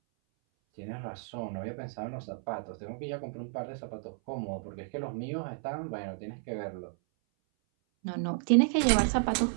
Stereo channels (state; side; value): silent; left; 56 dB below the other